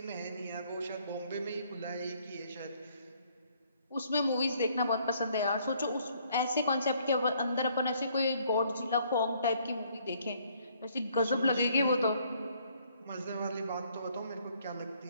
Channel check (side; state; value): both; inverted; correlation -0.65